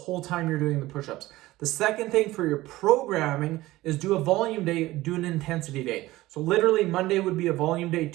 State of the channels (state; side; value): quieter; left; 17.6 dB